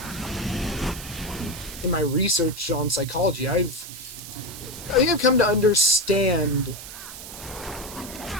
In my research on psychology, I think I've come to understand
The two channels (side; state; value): right; noise; hiss, 12 dB below the sound